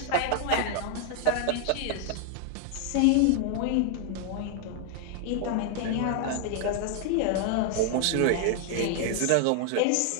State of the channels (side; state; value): both; different; correlation 0.00